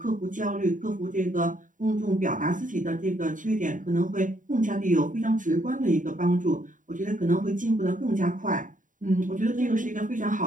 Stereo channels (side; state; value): left; late; 0.38 ms